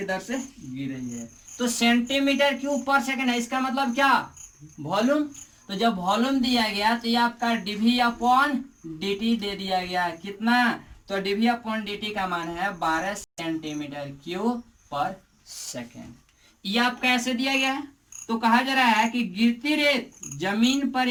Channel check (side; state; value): both; identical; correlation 1.00